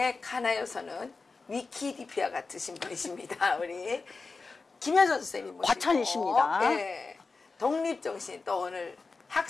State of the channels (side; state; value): right; quieter; 4.1 dB